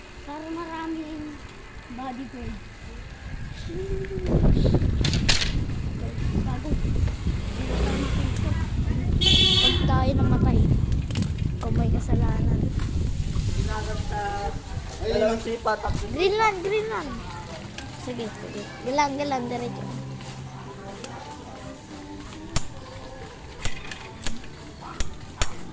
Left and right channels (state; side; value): identical; both; correlation 1.00